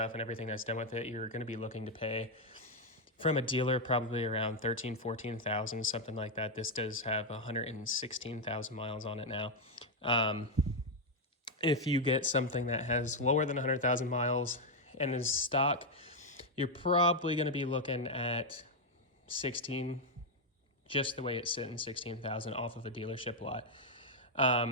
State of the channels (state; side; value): normal; both; correlation 0.02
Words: and everything that's done with it, you're going to be looking to pay from a dealer probably around 14,000 something like that. This does have 116,000 miles on it now. If you get something that has lower than 100,000 miles and is stock, you're probably going to be looking at 16, just the way it's sitting, 16,000 off of a dealership lot.